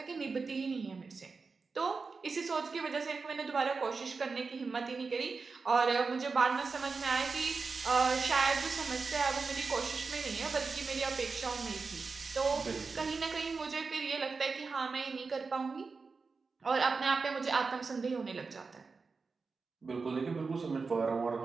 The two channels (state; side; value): quieter; left; 4.5 dB